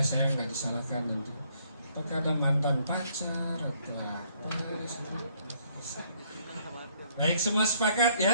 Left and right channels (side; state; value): both; inverted; correlation -0.67